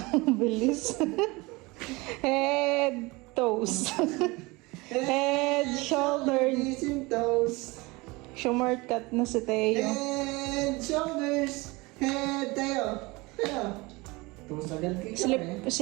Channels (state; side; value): quieter; left; 23.8 dB